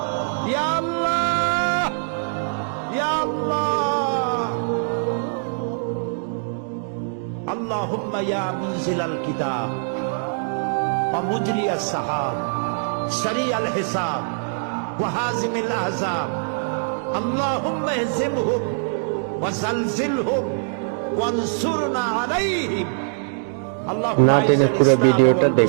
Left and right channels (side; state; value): left; silent; digital silence